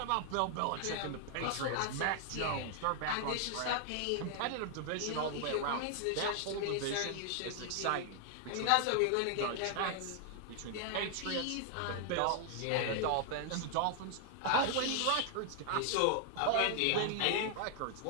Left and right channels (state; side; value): different; both; correlation 0.00